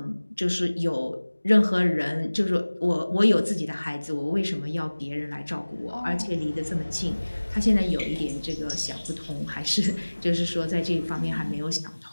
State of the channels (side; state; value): both; inverted; correlation -1.00